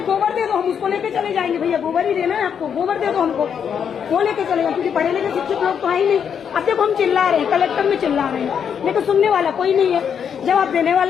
गोबर दे दो, हम उसको लेके चले जाएंगे। भैया गोबर ही देना है आपको, गोबर दे दो हमको, वो लेके चले जाए, क्योंकि पढ़े लिखे शिक्षित लोग तो है ही नहीं। अब देखो हम चिल्ला रहे हैं, कलेक्टर में चिल्ला रहे हैं, लेकिन सुनने वाला कोई नहीं है, जवाब देने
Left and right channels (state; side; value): quieter; right; 7.7 dB